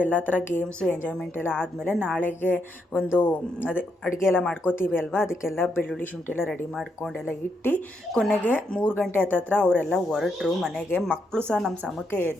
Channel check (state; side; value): normal; both; correlation 0.79